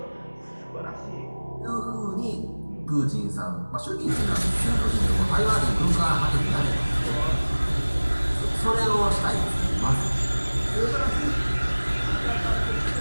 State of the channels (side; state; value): both; inverted; correlation -1.00